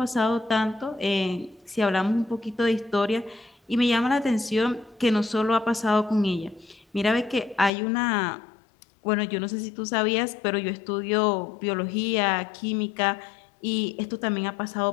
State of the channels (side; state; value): right; drops out; at 7.7 s